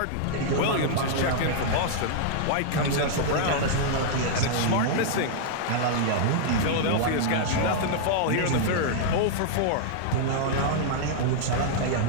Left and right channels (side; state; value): both; different; correlation -0.01